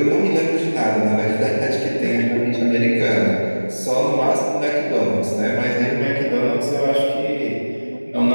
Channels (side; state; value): both; inverted; correlation -1.00